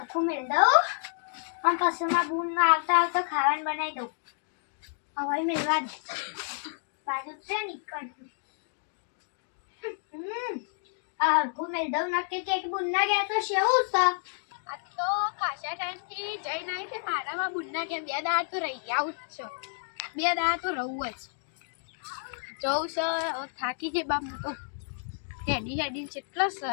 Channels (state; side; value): silent; right; digital silence